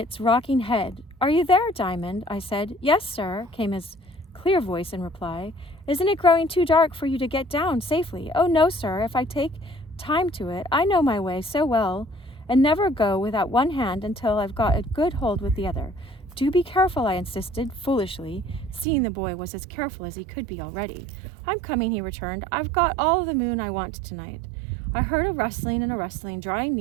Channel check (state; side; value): drops out; left; at 18.9 s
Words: rocking head. Are you there, Diamond? I said. Yes, sir, came his clear voice in reply. Isn't it growing too dark for you to get down safely? Oh, no, sir, if I take time to it. I know my way so well, and never go without one hand until I've got a good hold with the other. Do be careful, I insisted, foolishly, seeing the boy was as careful as he could be already. I'm coming, he returned. I've got all the moon I want tonight. I heard a rustling and a rustling, drawing